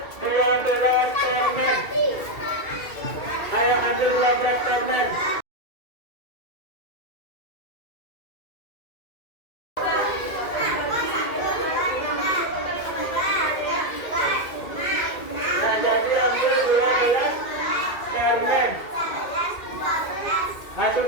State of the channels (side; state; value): right; late; 2.2 ms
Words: 12 permen. Ayo ambil 12 permen. Nah, jadi ambil 12 permen. Nah,